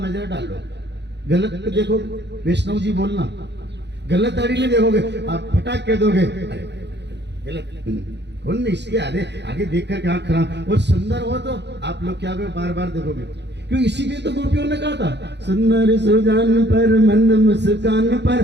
नजर डालो, गलत पे देखो, वैष्णव जी बोलना, गलत दाढ़ी नहीं देखोगे, आप फटाक कह दोगे गलत कौन नहीं, इसके आगे देखकर क्या खराब। और सुंदर हो तो आप लोग क्या बार बार देखोगे, क्यों? इसीलिए तो गोपियों ने कहा था, सुंदर सुजान पर मंद मुस्कान पर,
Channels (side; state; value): left; late; 0.50 ms